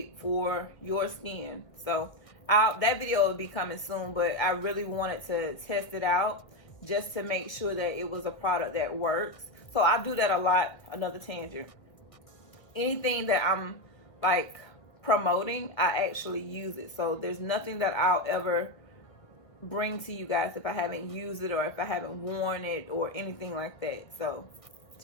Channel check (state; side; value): late; right; 1.7 ms